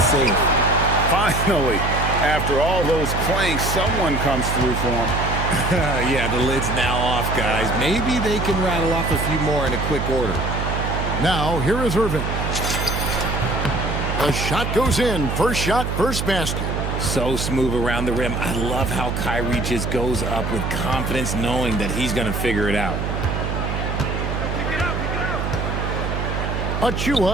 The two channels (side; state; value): right; noise; hum, 2 dB below the sound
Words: Finally, after all those planks, someone comes through for them. Yeah, the lid's now off, guys. Maybe they can rattle off a few more in a quick order. Now, here is Irving. The shot goes in. First shot, first basket. So smooth around the rim. I love how Kyrie just goes up with confidence, knowing that he's going to figure it out.